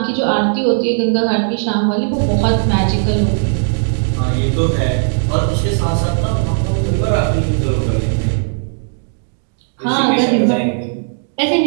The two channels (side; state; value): left; silent; digital silence